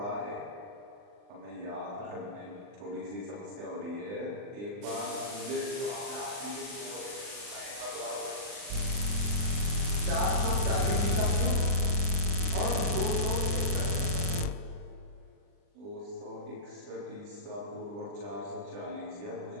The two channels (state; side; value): late; left; 39 ms